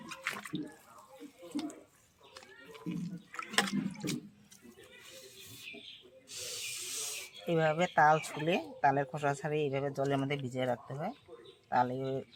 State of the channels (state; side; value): identical; both; correlation 1.00